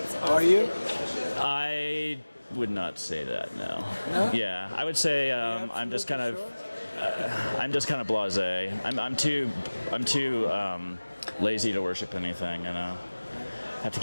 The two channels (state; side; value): inverted; both; correlation -1.00